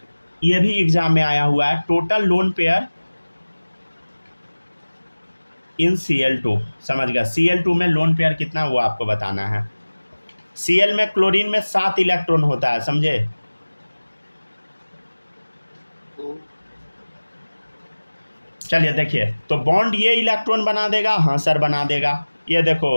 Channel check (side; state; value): both; inverted; correlation -1.00